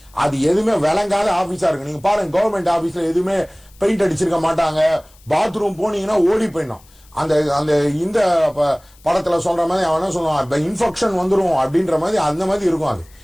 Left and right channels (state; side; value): noise; left; hiss, 28 dB below the sound